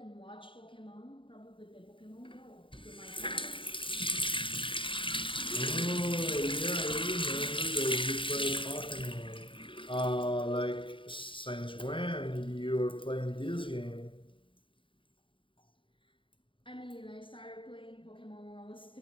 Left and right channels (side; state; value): right; late; 0.25 ms